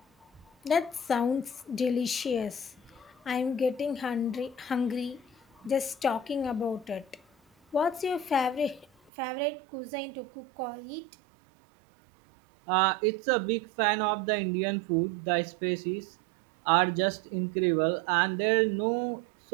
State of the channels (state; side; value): drops out; left; at 9.1 s